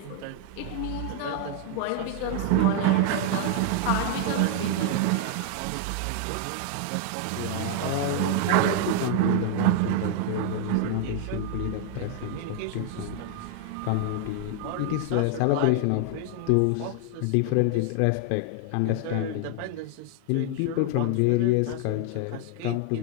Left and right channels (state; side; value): different; both; correlation 0.00